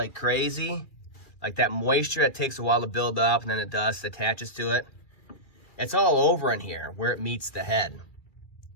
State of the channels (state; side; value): late; right; 2.4 ms